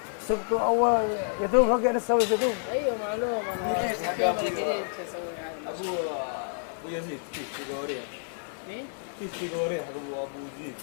Sabtu awal itu pakai ada saus itu. Ayo malu mana. Abu Yazid, tiga orang. Nih, Tiga orang. Abu Yazid.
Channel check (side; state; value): right; silent; 59 dB below the other